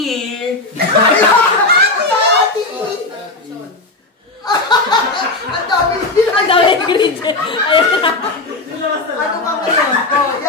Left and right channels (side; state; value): right; quieter; 3.1 dB